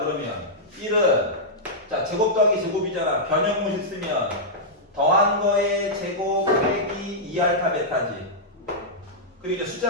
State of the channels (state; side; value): normal; both; correlation -0.09